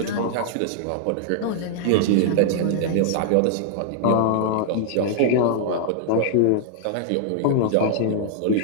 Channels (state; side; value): different; both; correlation -0.01